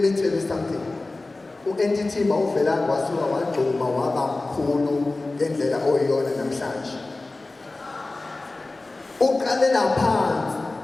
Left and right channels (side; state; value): right; quieter; 3.1 dB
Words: tell you something. U-entity mawuvela wasuka wagcuma waba mkhulu ngendlela oyiyona namhlanje. Uqalela phansi